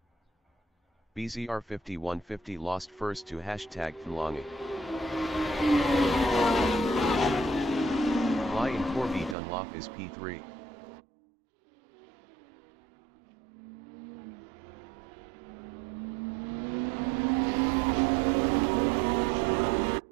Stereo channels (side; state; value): left; drops out; at 9.3 s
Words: BZR 5150 lost first to hashtag Flangy. Fly in Corby Dunlop is P3.